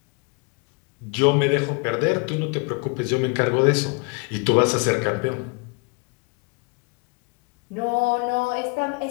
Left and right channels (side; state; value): right; quieter; 32.6 dB